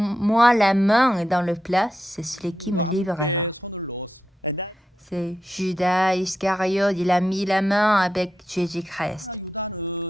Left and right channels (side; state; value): both; normal; correlation 0.86